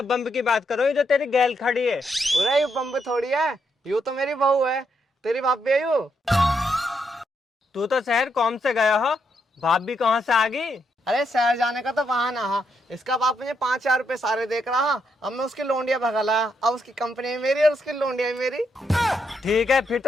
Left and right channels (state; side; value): normal; both; correlation 0.78